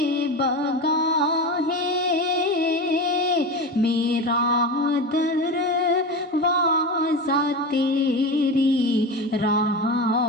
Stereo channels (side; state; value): both; normal; correlation 0.24